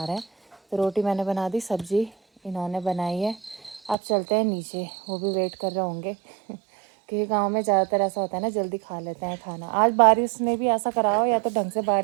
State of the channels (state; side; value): drops out; left; at 4.0 s